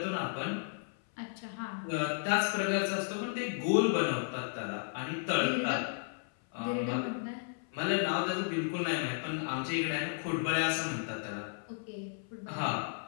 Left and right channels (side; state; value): right; silent; 55 dB below the other